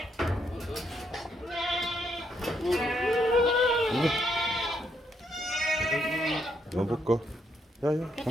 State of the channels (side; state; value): both; normal; correlation 0.76